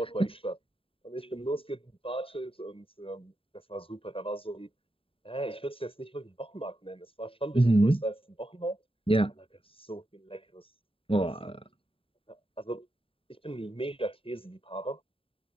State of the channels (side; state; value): right; late; 0.27 ms